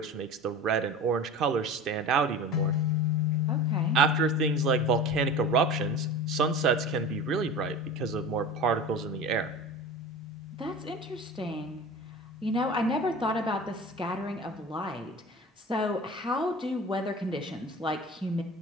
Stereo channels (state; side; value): normal; both; correlation 0.35